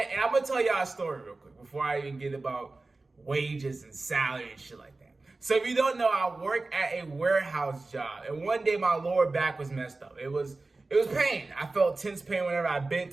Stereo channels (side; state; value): left; quieter; 3.4 dB